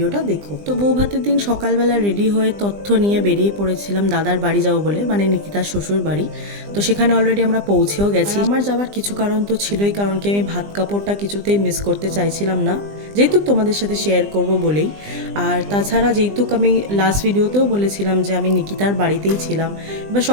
দেখো। তো বউ ভাতের দিন সকালবেলা রেডি হয়ে তথ্য নিয়ে বেরিয়ে পড়েছিলাম দাদার বাড়ি যাবো বলে, মানে নিকিতার শ্বশুর বাড়ি। তো সেখানে অলরেডি আমরা পৌঁছেও গেছি। আমার যাওয়ার কিছু কারণ তো ছিলই, কারণ কি আমি ভাত কাপড়টা কিছুতেই মিস করতে চাইছিলাম না, যেহেতু তোমাদের সাথে শেয়ার করব বলেই। আর তাছাড়া যেহেতু আমি লাস্ট ভিডিওতেও বলেছিলাম যে আমি নিকিতার বাড়িতেই ছিলাম, এবার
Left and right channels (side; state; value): left; late; 20 ms